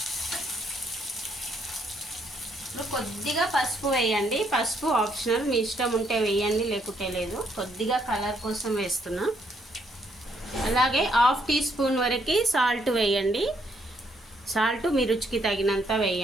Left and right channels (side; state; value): both; normal; correlation 0.72